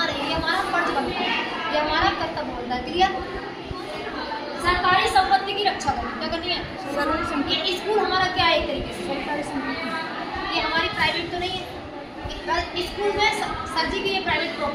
नहीं। ये हमारा फर्ज बनता है, ये हमारा कर्तव्य बनता है। क्लियर? सरकारी संपत्ति की रक्षा करनी, क्या करनी है? ये स्कूल हमारा क्या है, एक तरीके से सरकारी संपत्ति, ये हमारी प्राइवेट तो नहीं है। स्कूल में सर जी की ये प्राइवेट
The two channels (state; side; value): identical; both; correlation 1.00